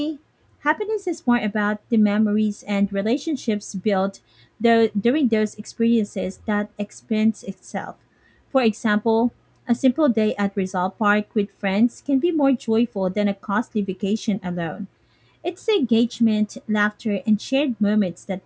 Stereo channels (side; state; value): both; identical; correlation 1.00